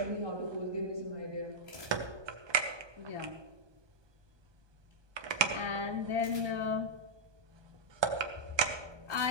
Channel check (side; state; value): left; late; 1.2 ms